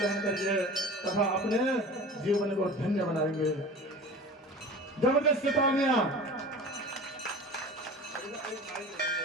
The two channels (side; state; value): both; normal; correlation 0.37